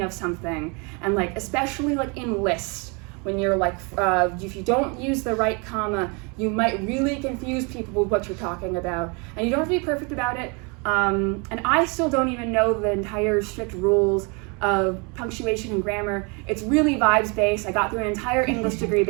of something. And like, especially like in lists, when you're like, if you don't use the right comma, you might really confuse people with what you're talking about. And you don't have to be perfect about it. And I still don't even know the entire strict rules of punctuation and grammar. It's really vibes based. I got through an entire English degree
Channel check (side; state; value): left; quieter; 31.9 dB